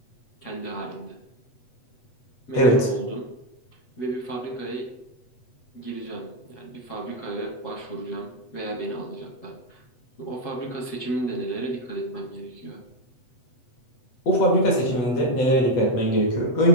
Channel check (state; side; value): late; right; 8.0 ms